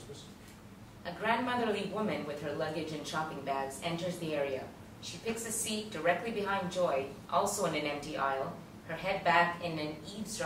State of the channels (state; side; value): identical; both; correlation 1.00